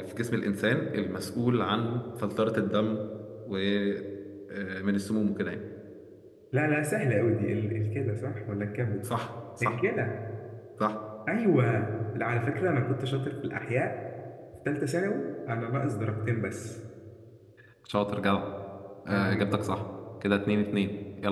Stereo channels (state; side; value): identical; both; correlation 1.00